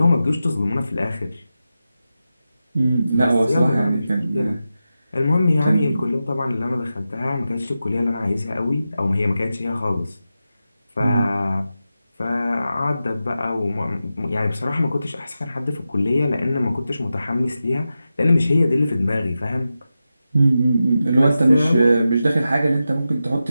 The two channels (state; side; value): inverted; both; correlation -0.91